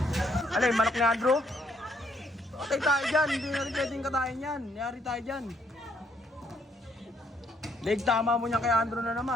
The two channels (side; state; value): both; normal; correlation 0.70